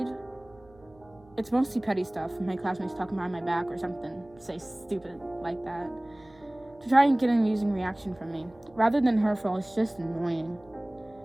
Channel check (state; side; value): noise; right; hum, 27 dB below the sound